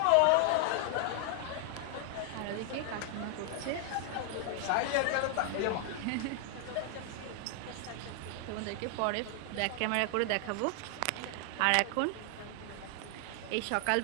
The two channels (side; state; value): both; different; correlation 0.00